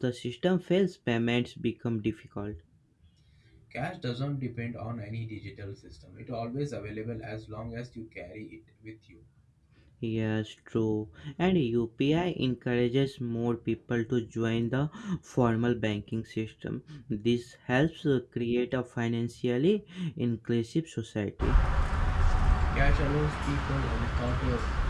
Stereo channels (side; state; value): both; identical; correlation 1.00